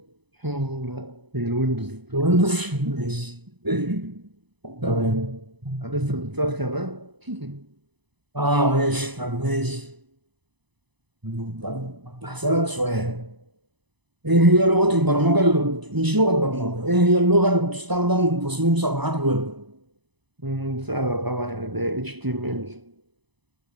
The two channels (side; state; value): left; late; 1.0 ms